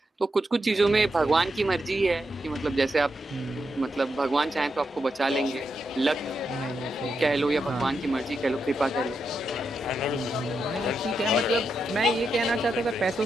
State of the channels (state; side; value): normal; both; correlation 0.84